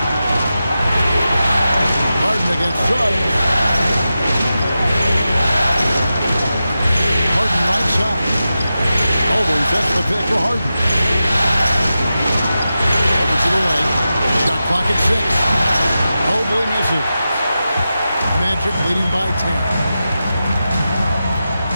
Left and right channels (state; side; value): inverted; both; correlation -0.91